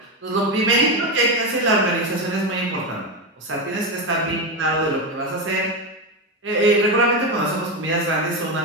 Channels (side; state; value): both; normal; correlation 0.12